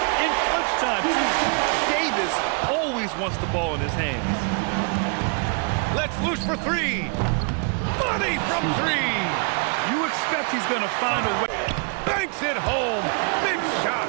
in clutch time, too. Davis always wants the ball in his hands. Let's loose for 3. Money from 3. You expect he's going to find a way. Banks it home. Big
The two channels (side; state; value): left; quieter; 38.7 dB